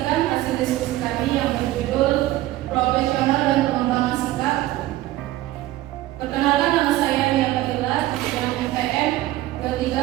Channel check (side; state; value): left; quieter; 15.9 dB